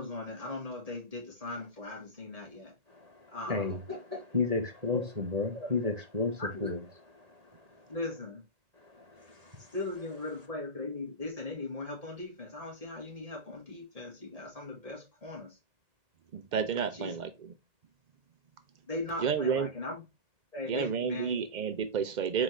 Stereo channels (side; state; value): left; late; 1.8 ms